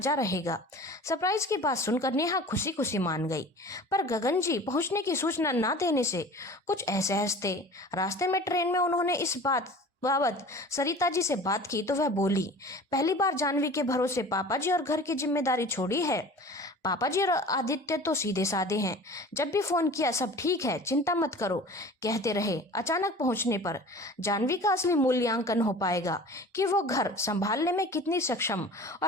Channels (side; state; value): both; normal; correlation 0.41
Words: रहेगा। सरप्राइज की बात सुनकर नेहा खुशी खुशी मान गई, पर गगन जी पहुंचने की सूचना न देने से कुछ असहज थे। रास्ते में ट्रेन में उन्होंने इस बात बाबत सरिता जी से बात की तो वह बोली, पहली बार जानवी के भरोसे पापा जी और घर की जिम्मेदारी छोड़ी है। पापा जी और आदित्य तो सीधे साधे हैं, जब भी फोन किया सब ठीक है, चिंता मत करो कहते रहे। अचानक पहुंचने पर जानवी का असली मूल्यांकन हो पाएगा कि वो घर संभालने में कितनी सक्षम